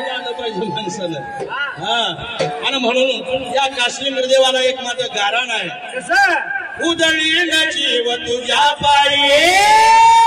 आलं पाहिजे माणसानं. हा आणि म्हणून या काश्मीर निर्देवाला एक माझं गारण आहे. कसं उदळीन जीव तुझ्या पायी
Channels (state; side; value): identical; both; correlation 1.00